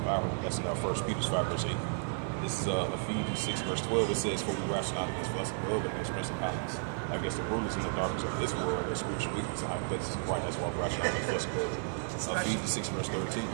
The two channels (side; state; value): left; silent; digital silence